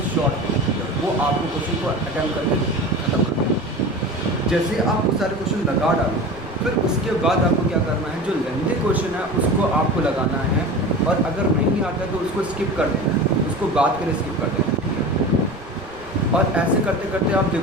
शॉर्ट है, वो आपको क्वेश्चन को अटैम्प्ट करके ख़त्म करना है। जैसे आप वो सारे क्वेश्चन लगा डालो फिर उसके बाद आपको क्या करना है, जो लेंथी क्वेश्चन है उसको आपको लगाना है और अगर नहीं आता तो उसको स्किप कर देना है, उसको बाद के लिए स्किप कर देना है। और ऐसे करते करते आप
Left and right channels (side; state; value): right; noise; rumble, 21 dB below the sound